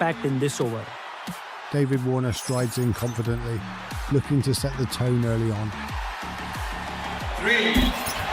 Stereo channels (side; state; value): both; identical; correlation 1.00